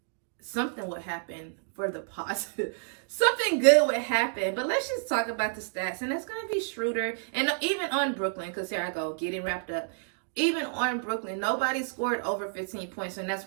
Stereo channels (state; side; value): silent; left; digital silence